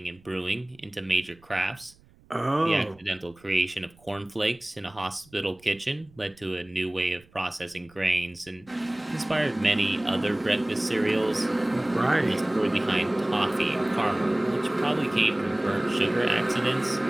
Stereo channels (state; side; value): noise; right; rumble, 28 dB below the sound